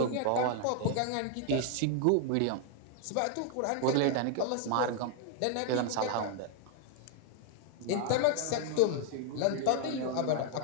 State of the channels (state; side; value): different; both; correlation 0.00